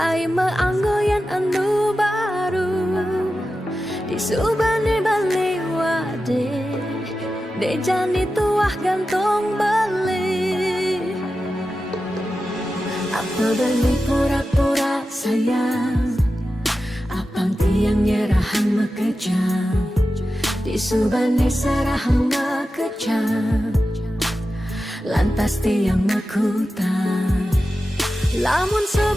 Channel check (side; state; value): both; normal; correlation 0.92